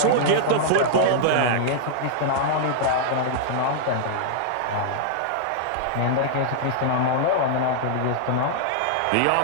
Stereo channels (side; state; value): both; different; correlation -0.01